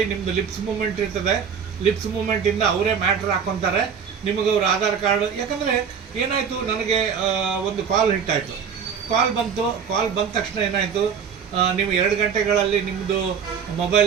ನಿಮ್ಮದು ಲಿಪ್ಸ್ ಮೂಮೆಂಟ್ ಇರ್ತದೆ, ಲಿಪ್ಸ್ ಮೂಮೆಂಟಿಂದ ಅವರೇ ಮ್ಯಾಟ್ರ್ ಹಾಕ್ಕೊತಾರೆ, ನಿಮಗೆ ಅವ್ರ ಆಧಾರ್ ಕಾರ್ಡ್. ಯಾಕಂದರೆ ಏನಾಯಿತು, ನನಗೆ ಒಂದು ಕಾಲ್ ಹಿಟ್ಟಾಯಿತು. ಕಾಲ್ ಬಂದ ತಕ್ಷಣ ಏನಾಯಿತು, ನೀವು 2 ಗಂಟೆಗಳಲ್ಲಿ ನಿಮ್ಮದು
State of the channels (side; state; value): left; quieter; 7.0 dB